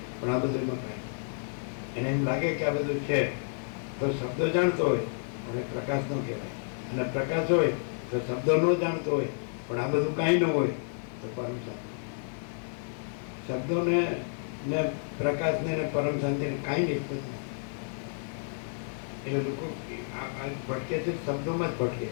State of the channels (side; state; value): right; silent; digital silence